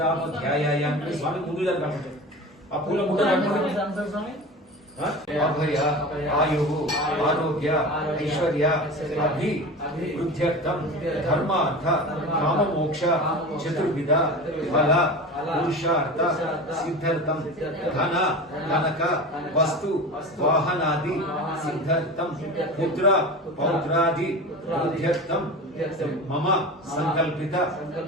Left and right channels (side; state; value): both; normal; correlation 0.31